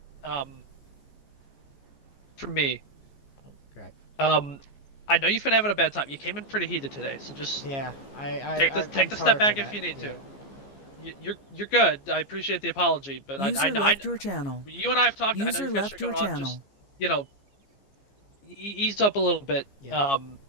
for me, I know you've been having a bad time. You came in pretty heated today, so just take the step back if you need to. You're good. I appreciate the apology, but User left your channel. You and I have talked. User I know left your channel. Just, ease up a little bit.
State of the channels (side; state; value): right; late; 15 ms